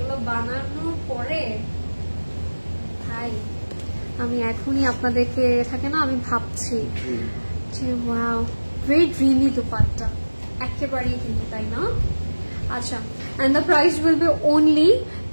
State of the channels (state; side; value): inverted; both; correlation -1.00